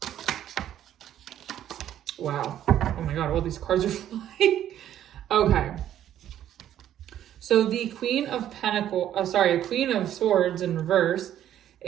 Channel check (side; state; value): left; quieter; 11.3 dB